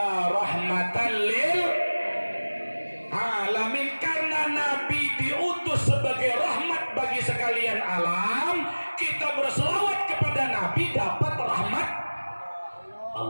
rahmatan lil alamin. Karena Nabi diutus sebagai rahmat bagi sekalian alam, kita berselawat kepada Nabi dapat rahmat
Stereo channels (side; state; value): both; inverted; correlation -1.00